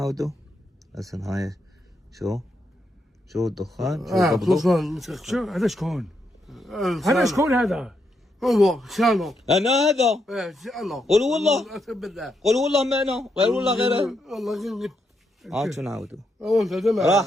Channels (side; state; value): both; normal; correlation 0.80